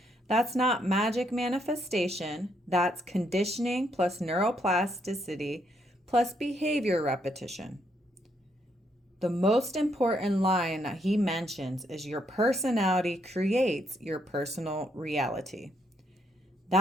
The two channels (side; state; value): both; normal; correlation 0.74